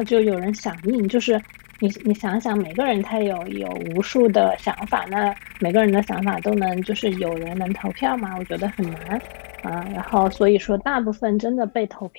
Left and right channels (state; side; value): silent; right; digital silence